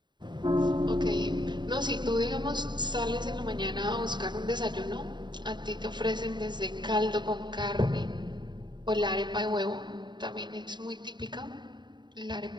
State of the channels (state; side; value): late; left; 0.22 ms